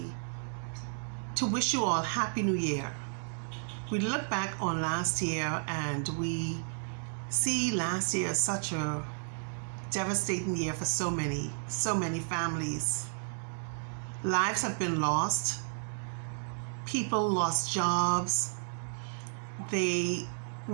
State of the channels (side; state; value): left; silent; digital silence